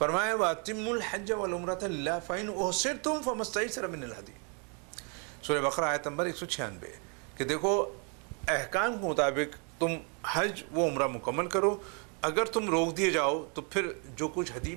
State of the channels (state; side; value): quieter; left; 37.2 dB